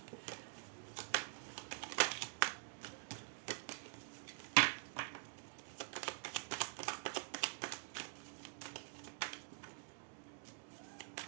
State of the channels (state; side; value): silent; left; digital silence